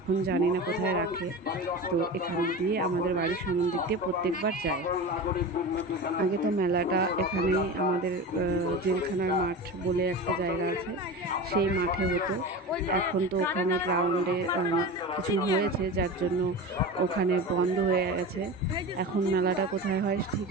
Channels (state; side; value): normal; both; correlation 0.28